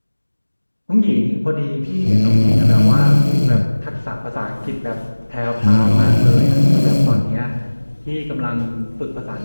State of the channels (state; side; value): inverted; both; correlation -1.00